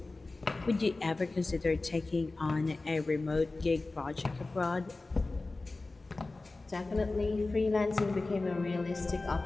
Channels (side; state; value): right; quieter; 3.3 dB